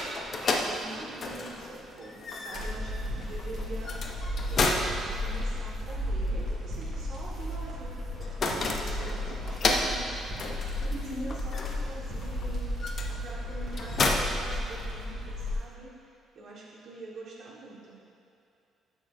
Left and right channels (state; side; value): normal; both; correlation 0.74